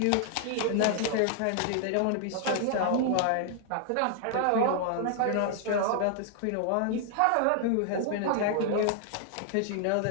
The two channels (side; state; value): both; different; correlation 0.00